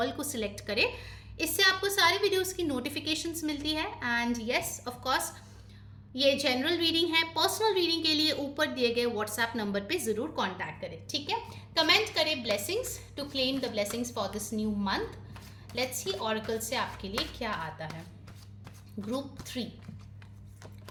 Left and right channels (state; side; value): identical; both; correlation 1.00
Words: को सिलेक्ट करें। इससे आपको सारे वीडियोस की नोटिफिकेशंस मिलती है। एंड यस, ऑफ कोर्स ये जनरल रीडिंग है। पर्सनल रीडिंग के लिए ऊपर दिए गए व्हाट्सएप नंबर पे ज़रूर कॉन्टैक्ट करें, ठीक है। कमेंट करें blessings to claim the blessings for this new month. Let's see oracle से आपके लिए क्या आता है। Group 3,